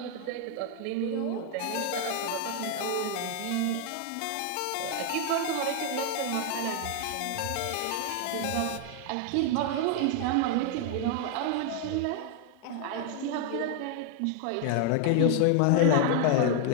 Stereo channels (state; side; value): different; both; correlation 0.00